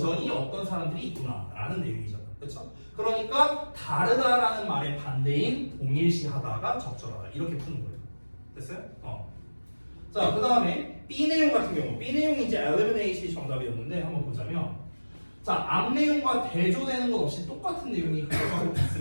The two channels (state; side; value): inverted; both; correlation -1.00